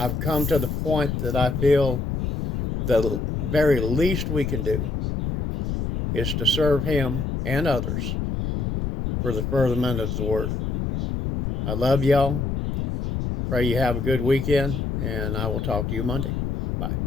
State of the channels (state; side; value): noise; left; rumble, 2 dB below the sound